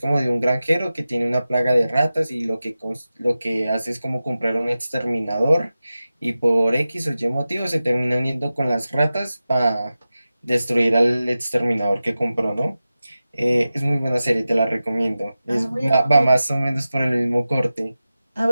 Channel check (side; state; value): both; inverted; correlation -0.94